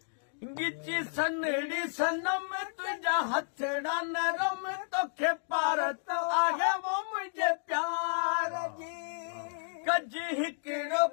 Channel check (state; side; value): silent; right; digital silence